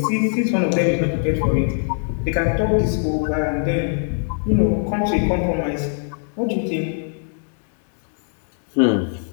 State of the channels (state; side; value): silent; right; 64 dB below the other